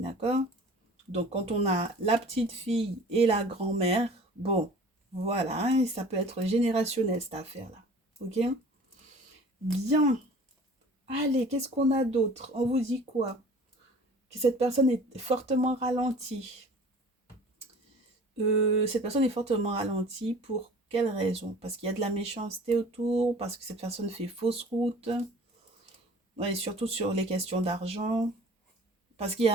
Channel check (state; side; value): normal; both; correlation 0.46